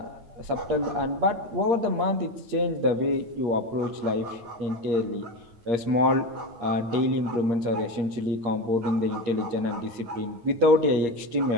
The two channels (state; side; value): late; left; 8.6 ms